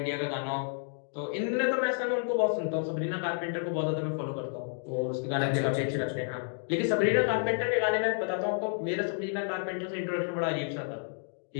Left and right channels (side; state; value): right; silent; digital silence